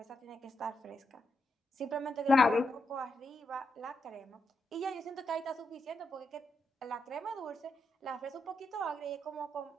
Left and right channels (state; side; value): normal; both; correlation 0.83